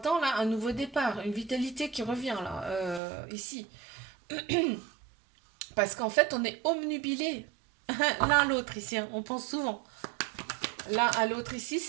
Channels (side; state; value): left; drops out; at 3.0 s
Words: là, un nouveau départ, une vitalité qui revient, là, ici. Parce qu'en fait, on est omnubilés l'un à l'autre ici, hein, on pense souvent. L'un à l'autre ici,